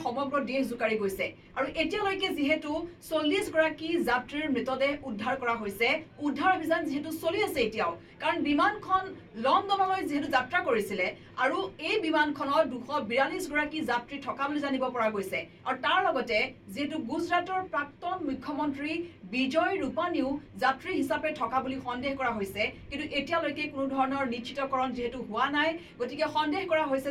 সমগ্ৰ দেশ জোকাৰি গৈছে আৰু এতিয়ালৈকে যেহেতু 40 গৰাকী যাত্ৰীৰ মৃতদেহ উদ্ধাৰ কৰা হৈছে উদ্ধাৰ অভিযান যেহেতু চলি আছে এতিয়াও কাৰণ বিমানখন লণ্ডনলৈ যেহেতু যাত্ৰা কৰিছিলে আৰু এই বিমানখনত 242 গৰাকী যাত্ৰী থকা বুলি জানিব পৰা গৈছে আৰু তাৰ লগতে যেহেতু গুজৰাটৰ প্ৰাক্তন মুখ্যমন্ত্ৰী বিজয় ৰূপানীও যাত্ৰী হিচাপে থকা বুলি সন্দেহ কৰা হৈছে কিন্তু এতিয়ালৈকে কোনো ধৰণৰ নিশ্চিতকৰণ যেহেতু হোৱা নাই গতিকে সন্দেহ কৰা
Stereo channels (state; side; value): identical; both; correlation 1.00